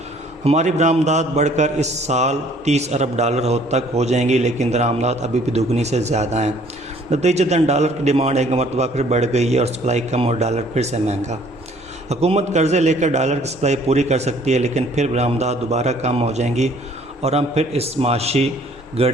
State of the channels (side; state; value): both; normal; correlation 0.58